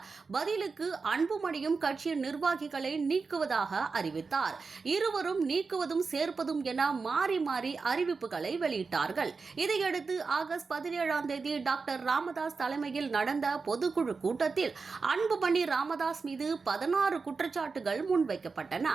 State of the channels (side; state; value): left; quieter; 4.6 dB